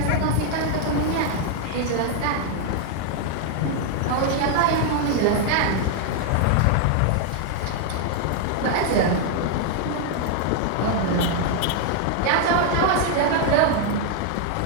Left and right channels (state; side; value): different; both; correlation 0.00